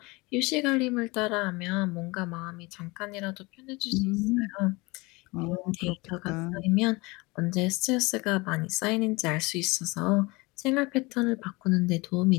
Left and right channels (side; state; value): right; quieter; 24.5 dB